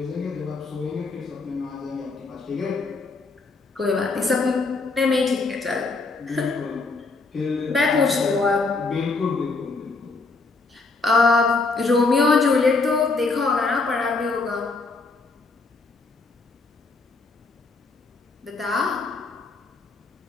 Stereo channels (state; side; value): quieter; right; 3.8 dB